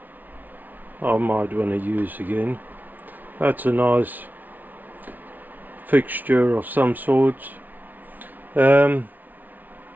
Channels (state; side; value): late; left; 0.081 ms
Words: I might want to use again. That's a nice fixture of some sort. What